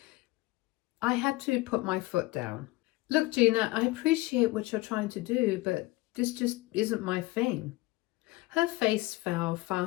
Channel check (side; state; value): right; quieter; 20.2 dB